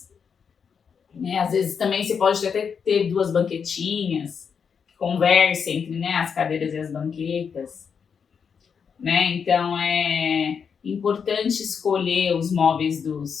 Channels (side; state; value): right; quieter; 6.5 dB